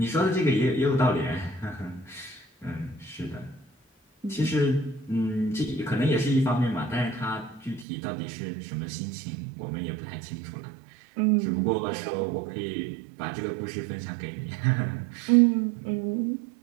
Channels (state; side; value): drops out; left; at 7.9 s